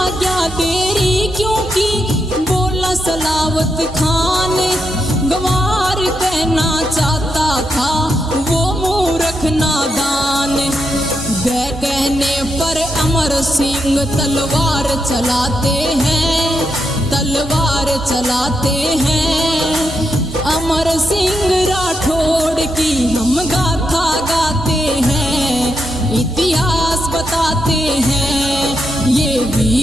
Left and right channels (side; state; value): both; normal; correlation 0.83